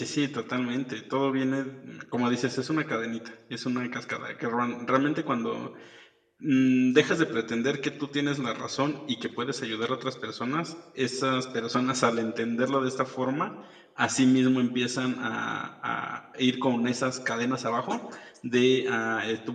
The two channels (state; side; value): identical; both; correlation 1.00